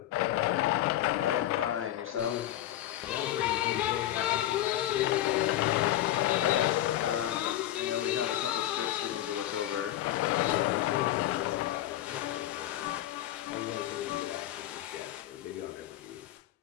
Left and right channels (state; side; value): quieter; right; 13.4 dB